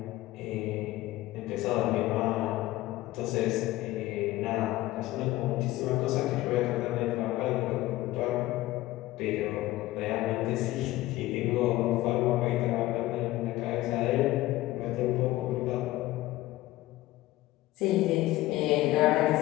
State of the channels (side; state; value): right; quieter; 17.2 dB